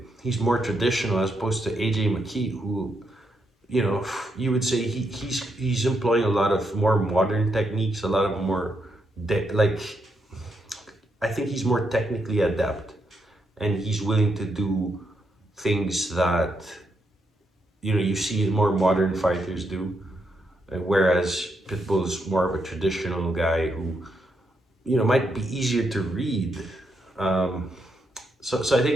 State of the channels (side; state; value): both; normal; correlation 0.80